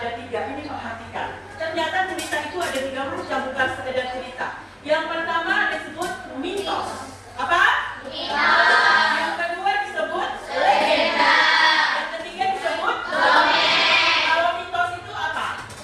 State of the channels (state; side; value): identical; both; correlation 1.00